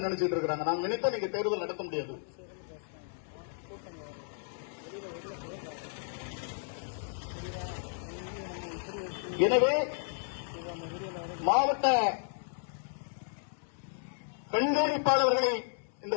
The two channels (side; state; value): right; silent; 55 dB below the other